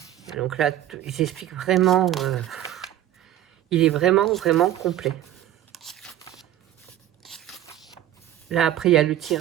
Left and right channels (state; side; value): quieter; left; 12.4 dB